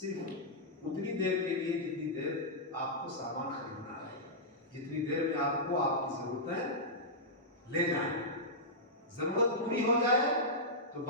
اتنی دیر کے لیے جتنی دیر آپ کو سامان خریدنا ہے، جتنی دیر میں آپ کو آپ کی ضرورتیں لے جائیں۔ ضرورت پوری ہو جائے تو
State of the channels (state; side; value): normal; both; correlation -0.11